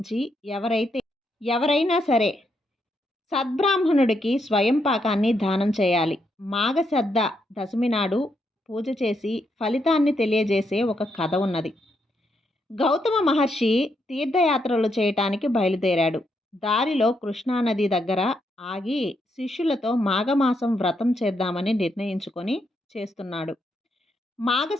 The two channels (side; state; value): both; normal; correlation 0.79